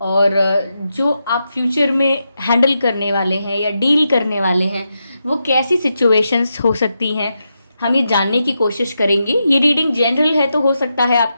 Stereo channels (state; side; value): inverted; both; correlation -0.86